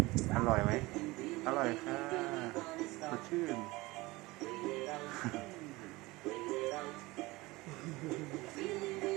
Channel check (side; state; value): left; quieter; 21.3 dB